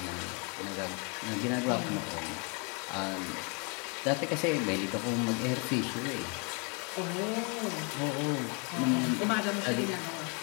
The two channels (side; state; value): right; quieter; 34.5 dB